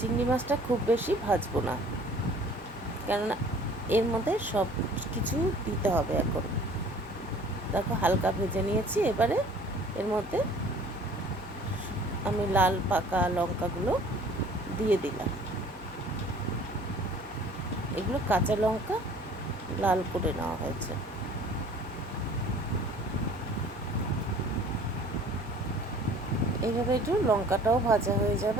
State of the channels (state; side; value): normal; both; correlation 0.51